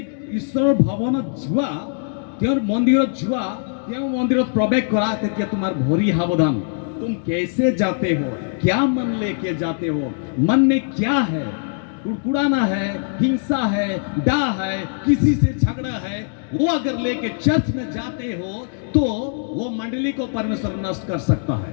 ঈশ্বৰৰ ভৱনত যোৱা, তেওঁৰ মন্দিৰত যোৱা, তেওঁৰ মন্দিৰত প্ৰৱেশ কৰা, তেতিয়া তোমাৰ ভৰি সাৱধান। तुम कैसे जाते हो, क्या मन लेके जाते हो, मन में क्या है, कुड़कुड़ाना है, हिंसा है, डा है, किसी से झगड़ा है, वो अगर लेके चर्च में जाते हो तो वो मंडली को परमेश्वर नष्ट कर सकता है।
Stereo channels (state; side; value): silent; right; digital silence